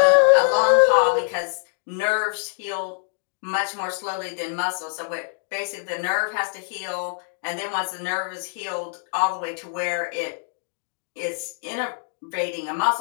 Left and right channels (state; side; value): silent; right; digital silence